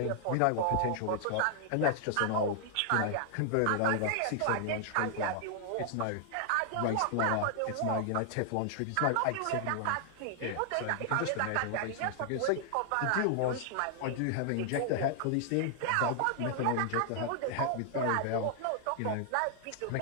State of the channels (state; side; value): different; both; correlation 0.00